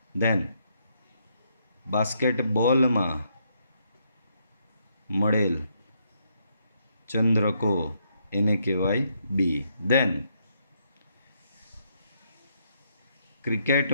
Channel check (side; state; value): both; inverted; correlation -0.75